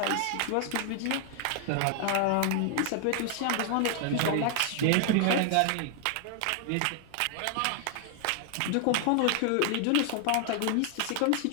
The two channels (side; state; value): both; different; correlation 0.00